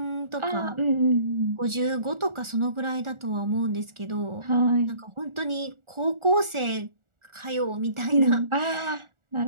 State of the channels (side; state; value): left; late; 1.4 ms